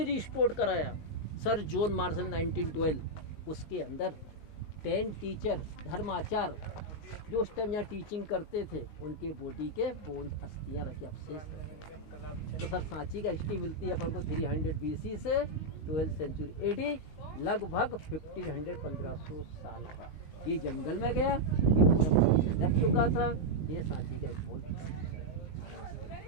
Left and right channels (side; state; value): right; late; 19 ms